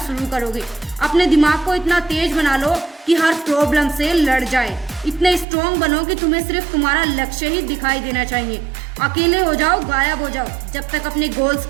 करोगे। अपने दिमाग को इतना तेज बना लो कि हर प्रॉब्लम से लड़ जाए। इतने स्ट्रॉन्ग बनो कि तुम्हें सिर्फ तुम्हारा लक्ष्य ही दिखाई देना चाहिए। अकेले हो जाओ, गायब हो जाओ जब तक अपने गोल्स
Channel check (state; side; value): drops out; left; at 5.5 s